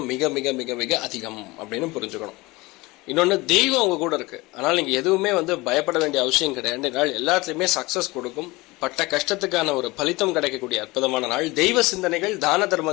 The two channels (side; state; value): right; quieter; 22.1 dB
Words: மிக மிக மிக மிக அதிகம் அப்படின்னு புரிஞ்சுக்கணும். இன்னொன்று, தெய்வம் உங்க கூட இருக்கு. ஆனால் நீங்க எதுவுமே பயப்பட வேண்டிய அவசியம் கிடையாது. நாள் எல்லாத்துலயுமே சக்சஸ் கொடுக்கும். பட்ட கஷ்டத்துக்கான ஒரு பலித்தம் கிடைக்கக்கூடிய அற்புதமான நாள். தெய்வ சிந்தனைகள், தான